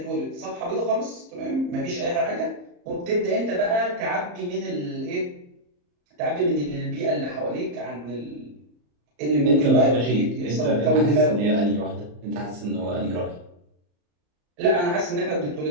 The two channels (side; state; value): left; late; 34 ms